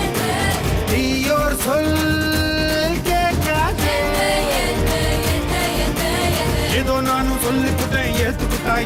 தீயோர் சொல் கேட்காதே ஏதோ நானும் சொல்லிக்கிட்டேன் ஏத்துக்கிட்டா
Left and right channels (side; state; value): both; identical; correlation 1.00